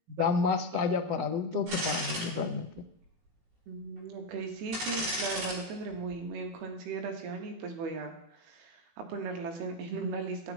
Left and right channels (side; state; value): left; late; 18 ms